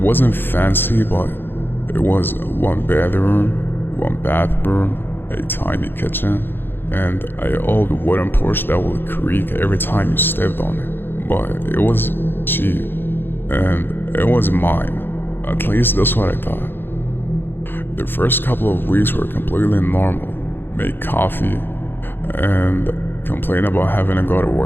fancy, but it was 1 bedroom, 1 bathroom, a tiny kitchen, and an old wooden porch that would creak every time you stepped on it. But it was cheap, and it was mine. At least that's what I thought. The first couple of weeks were completely normal. Make coffee, and complain about having to go to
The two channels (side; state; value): right; late; 0.10 ms